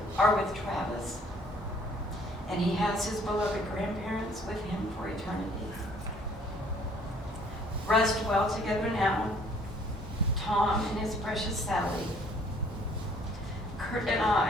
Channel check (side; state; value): both; normal; correlation 0.59